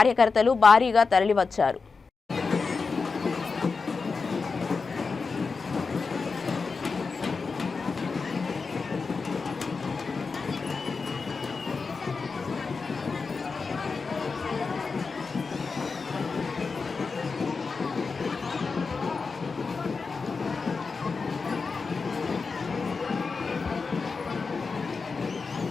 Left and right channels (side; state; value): right; quieter; 4.6 dB